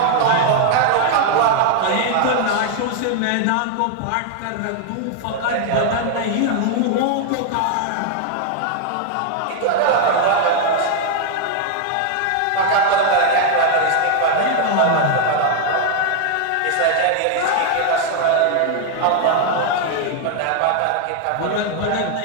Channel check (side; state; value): both; different; correlation 0.00